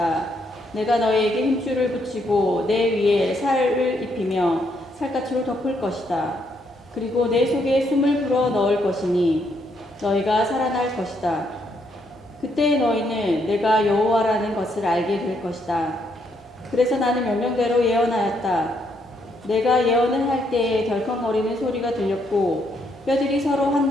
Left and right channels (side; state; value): both; normal; correlation 0.74